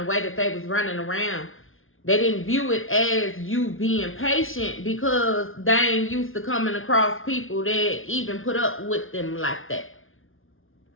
way that they was running around. They didn't view it as you being patient because they ain't used to coming across people that even put up with them like that.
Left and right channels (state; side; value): late; right; 0.59 ms